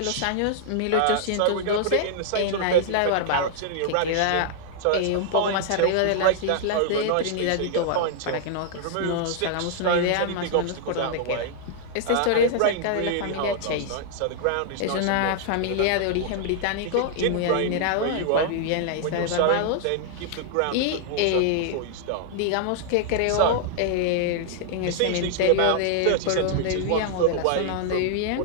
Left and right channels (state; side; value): different; both; correlation -0.01